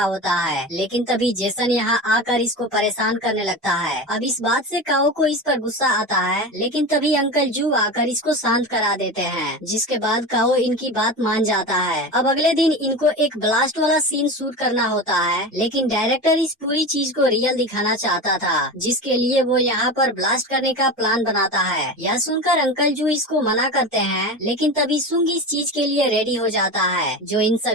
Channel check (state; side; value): normal; both; correlation 0.26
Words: होता है, लेकिन तभी जेसन यहाँ आकर इसको परेशान करने लगता है। अब इस बात से काओ को इस पर गुस्सा आता है, लेकिन तभी अंकल जू आकर इसको शांत करा देते हैं, जिसके बाद काओ इनकी बात मान जाता है। अब अगले दिन इनको एक ब्लास्ट वाला सीन शूट करना होता है, लेकिन डायरेक्टर इस पूरी चीज को रियल दिखाना चाहता था, जिसके लिए वो यहाँ पर ब्लास्ट करने का प्लान बनाता है। यह सुनकर अंकल जू इसको मना करते हैं, लेकिन तभी सुंग इस चीज के लिए रेडी हो जाता है, जो इन